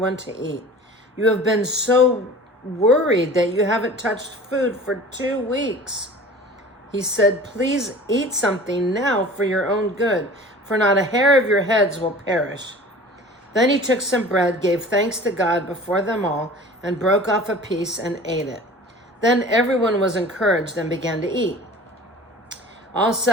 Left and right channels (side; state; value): both; normal; correlation 0.42